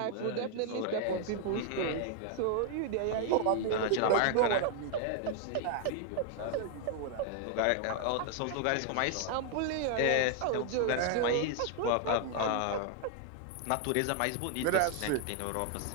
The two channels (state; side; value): different; both; correlation 0.00